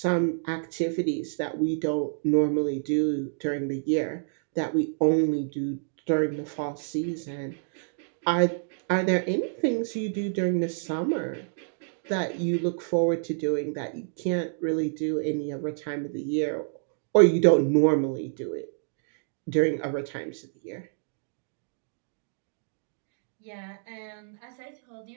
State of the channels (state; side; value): silent; left; digital silence